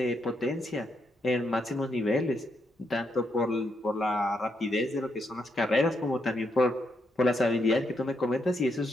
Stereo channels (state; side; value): normal; both; correlation 0.79